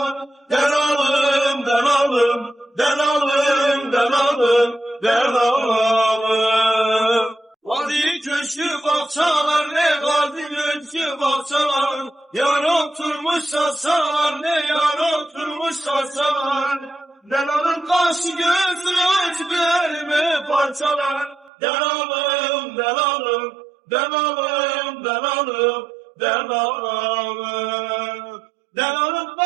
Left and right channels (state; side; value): drops out; left; at 21.5 s